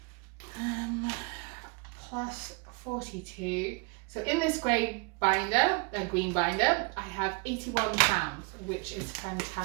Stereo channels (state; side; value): quieter; left; 31.5 dB